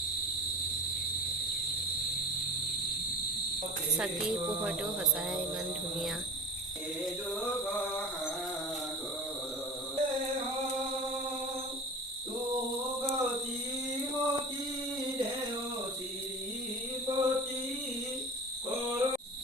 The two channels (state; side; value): normal; both; correlation 0.34